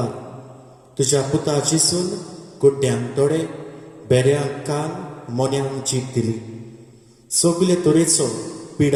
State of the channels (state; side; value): identical; both; correlation 1.00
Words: तुज्या पुता जिसून गुड्ड्यांक दोळे, बेऱ्यांक कान, मोन्यांक जीब दिली. सगले तरेचो